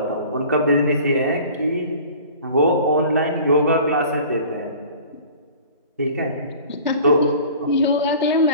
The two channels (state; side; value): inverted; both; correlation -0.45